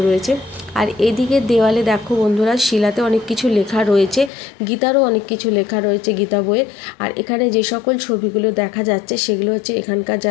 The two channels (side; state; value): right; drops out; at 4.3 s